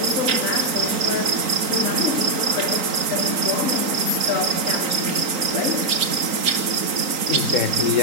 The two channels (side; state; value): left; late; 3.9 ms